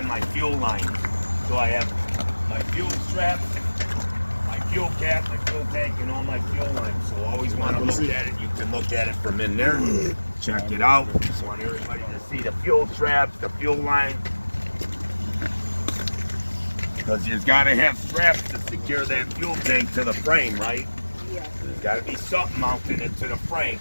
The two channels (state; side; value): inverted; both; correlation -1.00